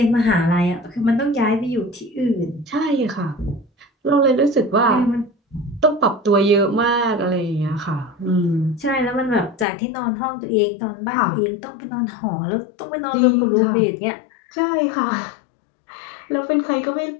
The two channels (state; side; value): drops out; right; at 9.7 s